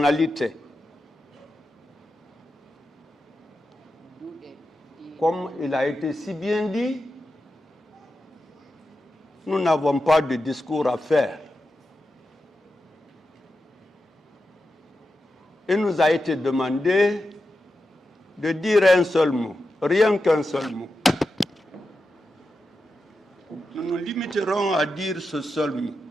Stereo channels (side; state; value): both; normal; correlation 0.90